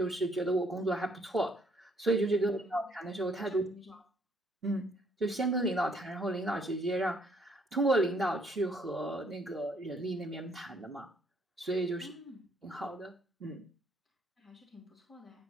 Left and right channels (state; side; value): normal; both; correlation 0.66